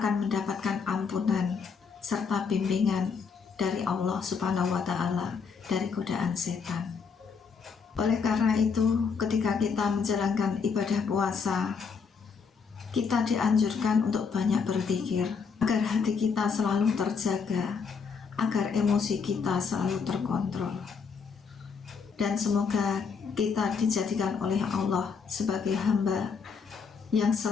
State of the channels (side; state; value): right; quieter; 5.6 dB